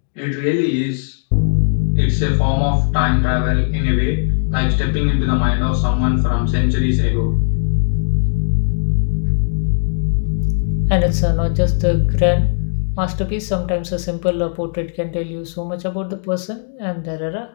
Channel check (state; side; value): silent; right; digital silence